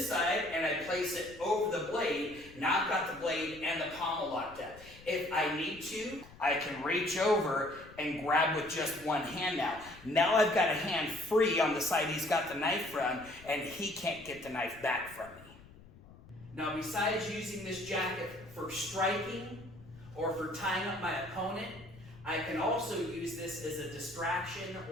side and I place it over the blade. Now I've got the blade and the pommel locked up. If I need to, I can reach over and grab with just one hand now. Now I've got a hand free on the side he's got the knife from, and he can't get the knife back from me. Now, besides using this jacket for striking or for tying up my opponent, I can also use this as a distraction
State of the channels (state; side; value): noise; left; rumble, 21 dB below the sound